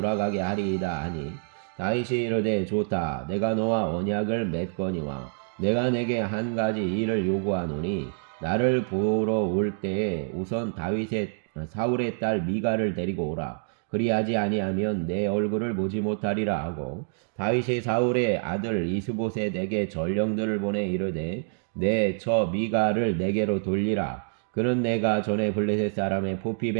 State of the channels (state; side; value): silent; left; digital silence